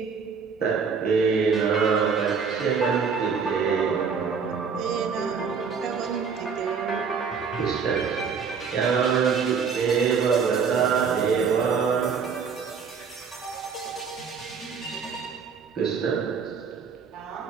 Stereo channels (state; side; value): quieter; left; 5.9 dB